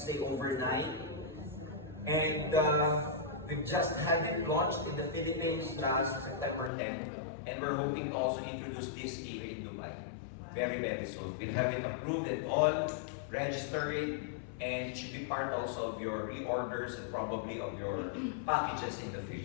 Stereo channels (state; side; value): drops out; right; at 6.7 s